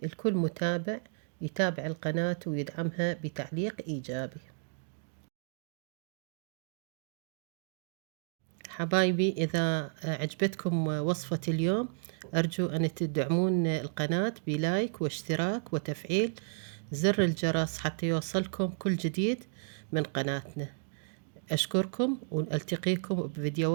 لكل متابع يتابع القناة ويدعمها بتعليق إيجابي. حبايبي، إذا عجبتكم وصفة اليوم أرجو أن تدعمون القناة بلايك واشتراك وتفعيل زر الجرس حتى يوصلكم كل جديد من قناتنا. أشكركم، وألتقيكم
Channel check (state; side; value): silent; left; digital silence